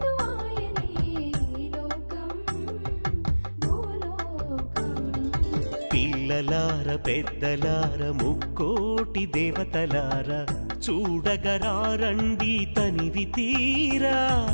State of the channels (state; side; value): inverted; both; correlation -1.00